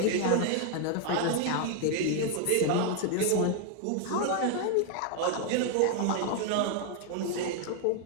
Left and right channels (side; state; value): both; different; correlation 0.00